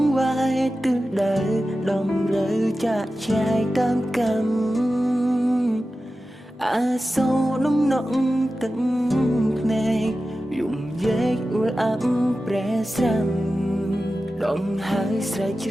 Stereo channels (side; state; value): both; normal; correlation 0.94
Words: ងវាយទិសដៅដំរើចាក់ឆ្ងាយតាមកម្មអាសូរនំនក់ទឹកភ្នែកយំយែកអួលអាប់ប្រែស្រាំដងហើយស្រែកច្